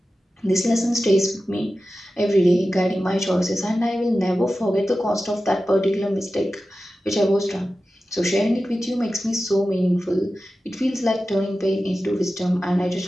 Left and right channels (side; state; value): both; normal; correlation 0.94